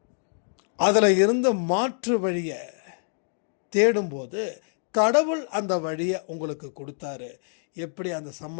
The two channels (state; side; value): silent; right; digital silence